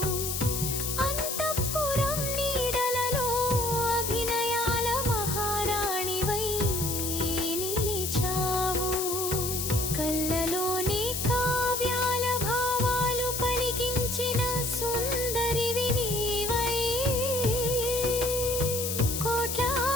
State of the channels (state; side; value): noise; left; hiss, 2 dB below the sound